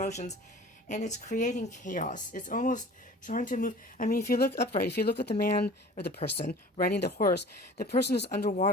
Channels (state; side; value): normal; both; correlation 0.44